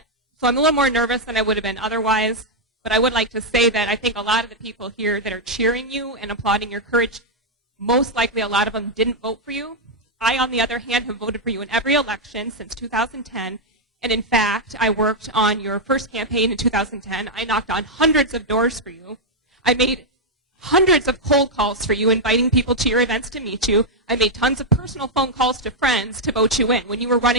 I'm a little more nervous than I would have been otherwise. But I would like to say that I think a lot of the people here that are cheering you and applauding your courage, most likely a lot of them didn't vote for you. I, on the other hand, have voted for you in every election since 2010. And in fact, I worked on your first campaign in 2010. I knocked on hundreds of doors for you. I made hundreds of cold calls for you, inviting people to your events to meet you. I made tons of personal phone calls to friends to vote you in when you were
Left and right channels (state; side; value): normal; both; correlation -0.02